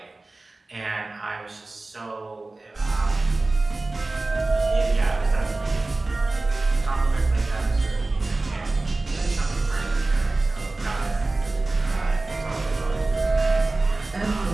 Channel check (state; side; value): quieter; left; 3.1 dB